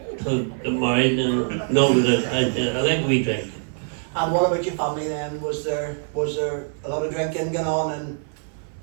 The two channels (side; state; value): left; silent; 59 dB below the other